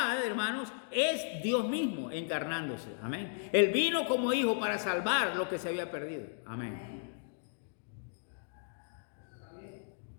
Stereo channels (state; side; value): silent; right; digital silence